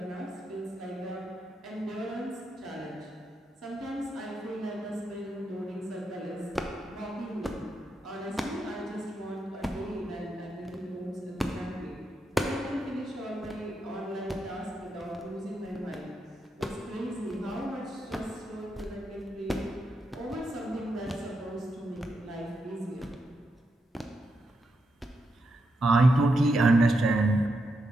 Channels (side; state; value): both; normal; correlation 0.84